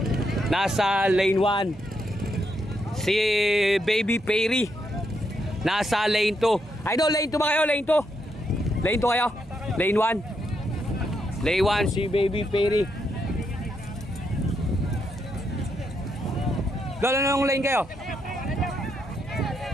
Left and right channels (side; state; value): both; normal; correlation 0.79